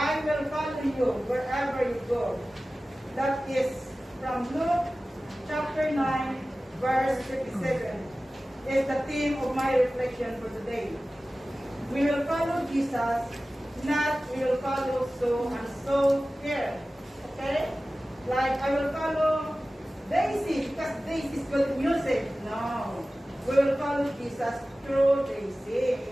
will follow you wherever you go. That is from Luke chapter 9, verse 57, is the theme of my reflection for today. We will follow Jesus, not we will follow so and so here. Okay? Like I will follow Daisy because Daisy is good music. No. We will follow Jesus through Daisy.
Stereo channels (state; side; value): normal; both; correlation 0.96